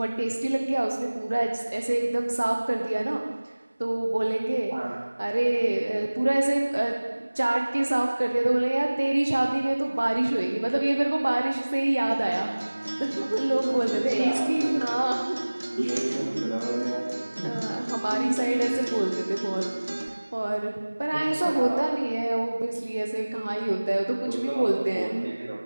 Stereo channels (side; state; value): both; inverted; correlation -1.00